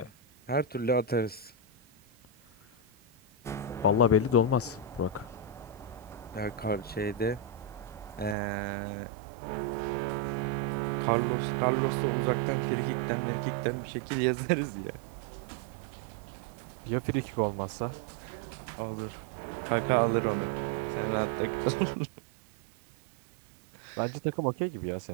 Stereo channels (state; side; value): drops out; left; at 8.3 s